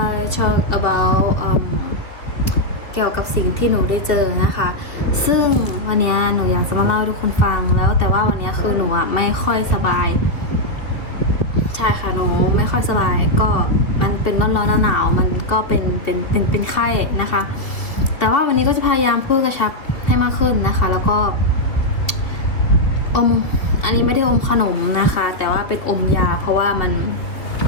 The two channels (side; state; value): right; late; 2.6 ms